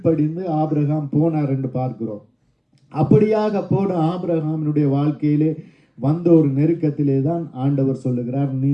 ஆபிரகாம் போனார் என்று பார்க்கிறோம். அப்படியாக போன ஆபிரகாமினுடைய வாழ்க்கையிலே வந்த ஒரு நெருக்கத்திலே தான் ஆண்டவர் சொல்லுகிறார், நீ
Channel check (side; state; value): both; identical; correlation 1.00